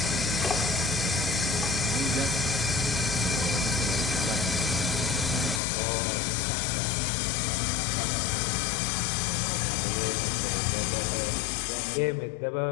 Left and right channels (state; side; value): drops out; right; at 5.6 s